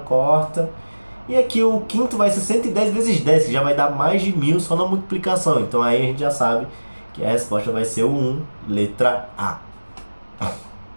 corta. E aqui o quinto vai ser 110 vezes 10, que já vai dar mais de 1.000 só na multiplicação. Então aí a gente já sabe que a resposta vai ser o 1, letra A.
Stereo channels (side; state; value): both; inverted; correlation -1.00